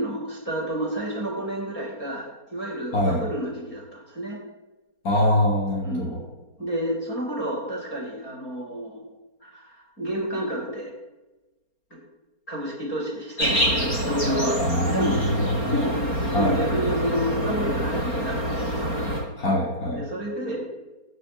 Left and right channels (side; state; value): right; late; 4.3 ms